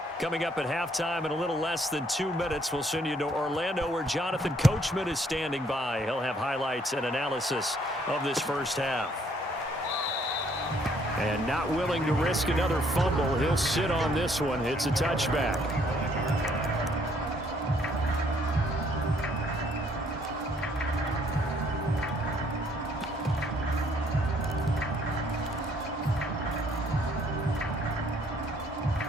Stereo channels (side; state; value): both; normal; correlation 0.65